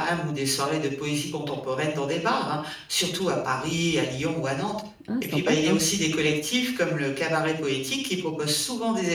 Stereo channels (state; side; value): identical; both; correlation 1.00